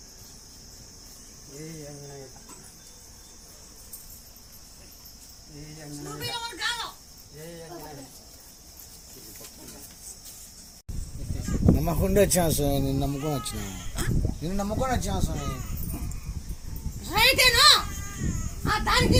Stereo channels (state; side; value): identical; both; correlation 1.00